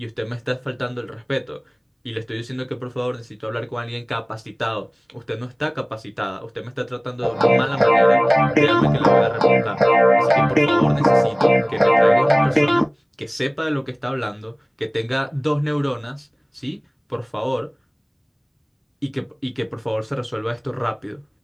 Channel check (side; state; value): both; identical; correlation 1.00